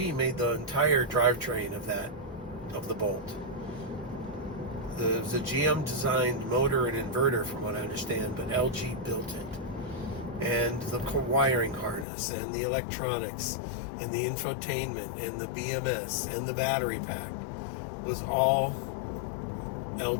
made the entire drivetrain of the Bolt. It was a GM designed motor and inverter, from what I understand, but LG built it. And the wiring harness and the electronics and the infotainment and the BMS and the battery pack was all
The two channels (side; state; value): right; drops out; at 12.1 s